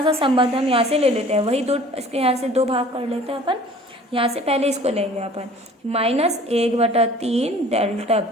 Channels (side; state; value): both; normal; correlation 0.49